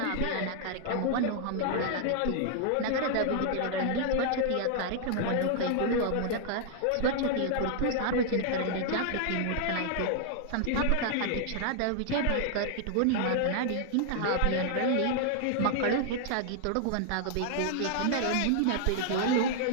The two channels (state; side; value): different; both; correlation 0.00